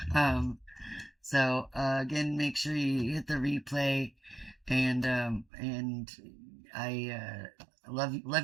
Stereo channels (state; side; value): drops out; left; at 5.5 s